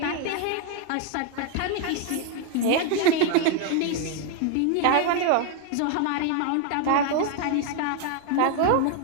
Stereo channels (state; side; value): different; both; correlation 0.01